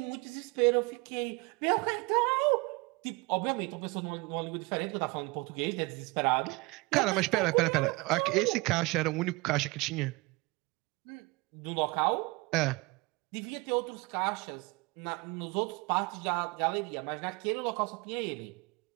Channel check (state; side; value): quieter; left; 25.1 dB